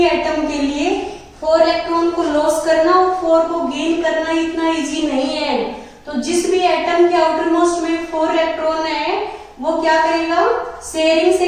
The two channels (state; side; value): identical; both; correlation 1.00